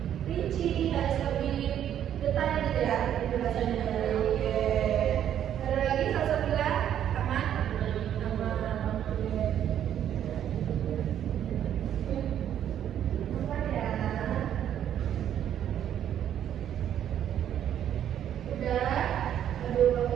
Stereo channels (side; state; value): left; quieter; 10.2 dB